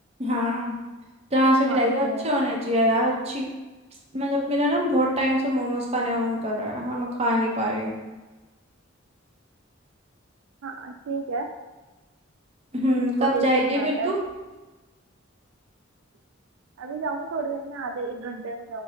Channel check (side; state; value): both; normal; correlation 0.27